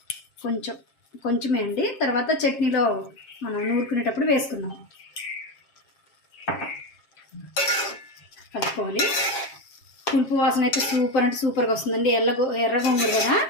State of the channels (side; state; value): right; late; 7.5 ms